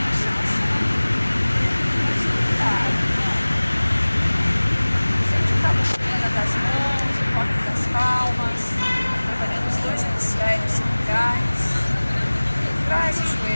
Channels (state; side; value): inverted; both; correlation -1.00